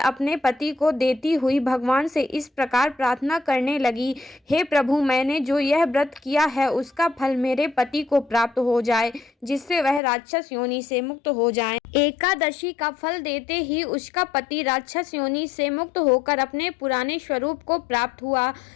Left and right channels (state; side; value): drops out; right; at 10.0 s